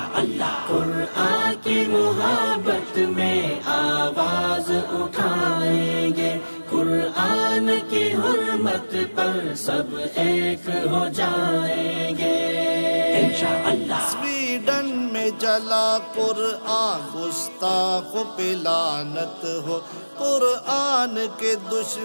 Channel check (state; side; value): inverted; both; correlation -1.00